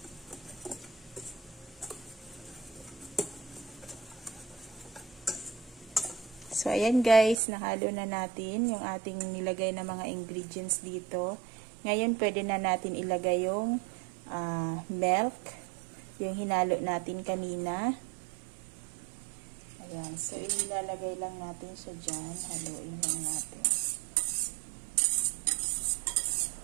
So, ayan guys, nahalo na natin yung ating nilagay na mga ingredients dito. Ngayon, pwede na natin ilagay yung milk, yung hinalo natin kanina. Ayan, so ilalagay lang natin siya dyan. Haluin lang natin.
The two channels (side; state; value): left; drops out; at 7.4 s